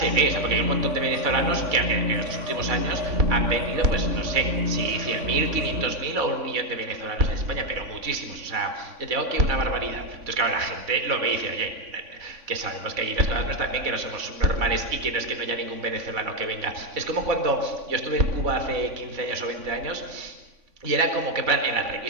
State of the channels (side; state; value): left; late; 3.5 ms